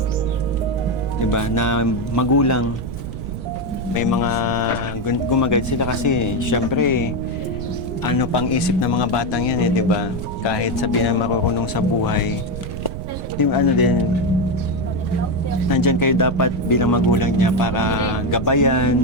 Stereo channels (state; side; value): noise; right; rumble, 7 dB below the sound